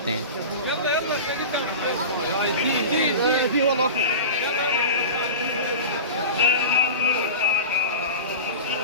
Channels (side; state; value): both; inverted; correlation -0.30